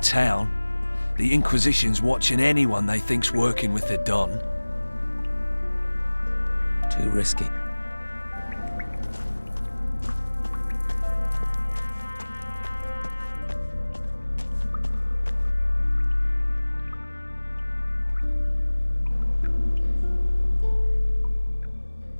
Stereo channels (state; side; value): inverted; both; correlation -1.00